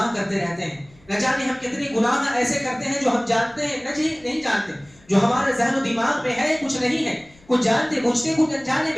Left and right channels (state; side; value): noise; left; rumble, 28 dB below the sound